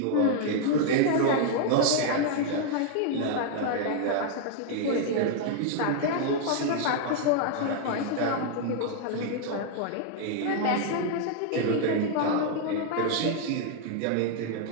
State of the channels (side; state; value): both; different; correlation 0.00